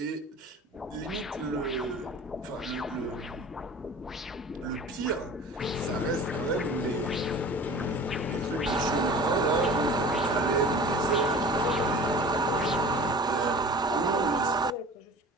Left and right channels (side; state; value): both; normal; correlation 0.41